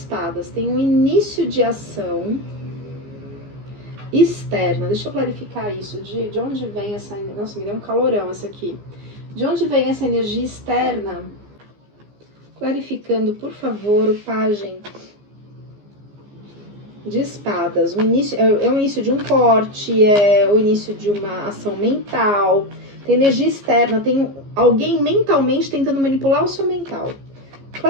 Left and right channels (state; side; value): late; left; 15 ms